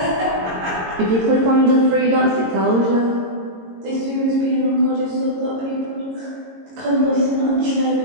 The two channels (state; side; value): late; left; 22 ms